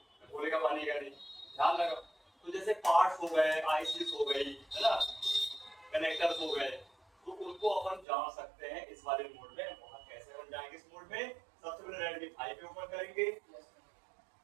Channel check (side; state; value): left; drops out; at 8.1 s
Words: बोलेगा पानी का नहीं, ध्यान लगा। तो जैसे पार्ट्स हो गए, आईसीस हो गई, है ना, कनेक्टर्स हो गए, तो उनको अपन जान सकते हैं इस वाले मोड में। वहां कैसे अपन जाएंगे इस मोड में? सबसे पहले Redmi 5 पे ओपन करेंगे,